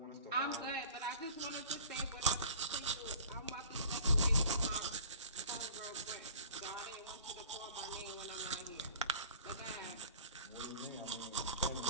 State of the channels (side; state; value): both; inverted; correlation -0.44